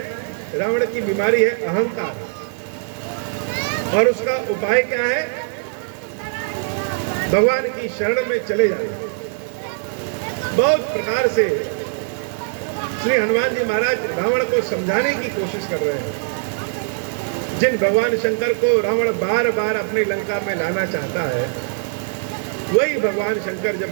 रावण की बीमारी है अहंकार, और उसका उपाय क्या है? भगवान की शरण में चले जाना। बहुत प्रकार से श्री हनुमान जी महाराज रावण को समझाने की कोशिश कर रहे हैं। जिन भगवान शंकर को रावण बार बार अपनी लंका में लाना चाहता है, वही भगवान शंकर जब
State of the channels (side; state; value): left; silent; 60 dB below the other